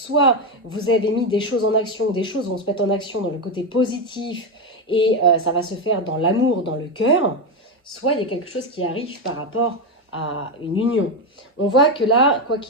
vous avez mis des choses en action, des choses vont se mettre en action dans le côté positif et ça va se faire dans l'amour, dans le cœur, soit il y a quelque chose qui arrive par rapport à une union. On voit que là, quoi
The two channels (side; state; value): both; normal; correlation 0.10